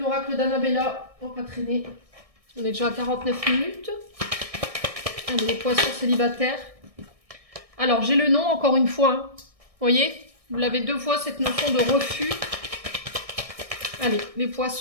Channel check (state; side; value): late; left; 1.6 ms